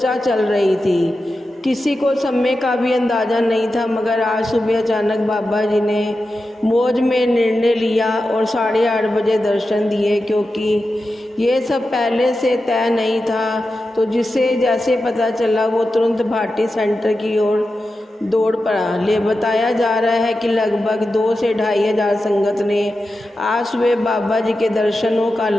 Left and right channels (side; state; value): both; normal; correlation 0.91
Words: चल रही थी। किसी को समय का भी अंदाज़ा नहीं था, मगर आज सुबह अचानक बाबा जी ने मौज में निर्णय लिया और 8:30 बजे दर्शन दिए। क्योंकि ये सब पहले से तय नहीं था, तो जिसे जैसे पता चला वो तुरंत भाटी सेंटर की ओर दौड़ पड़ा। बताया जा रहा है कि लगभग 2 से 2,500 संगत ने आज सुबह बाबा जी के दर्शनों का